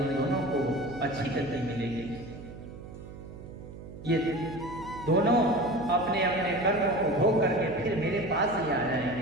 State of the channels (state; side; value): noise; right; hum, 14 dB below the sound